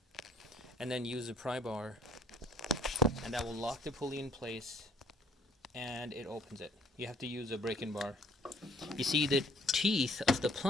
and then use the pry bar, and that will lock the pulley in place, and it opens it. You have to use a break-in bar. You see, the teeth of the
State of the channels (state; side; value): normal; both; correlation 0.59